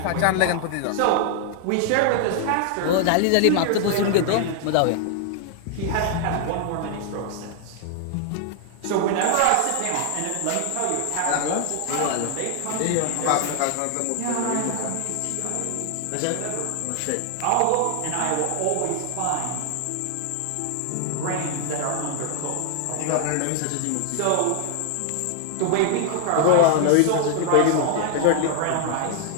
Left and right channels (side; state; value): both; different; correlation 0.00